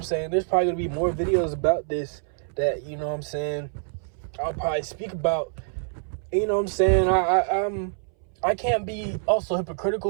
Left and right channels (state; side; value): silent; left; 61 dB below the other